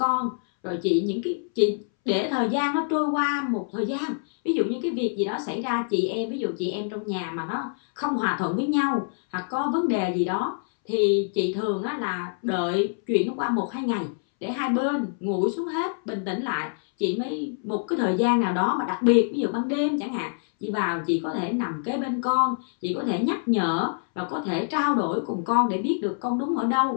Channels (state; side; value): silent; right; 61 dB below the other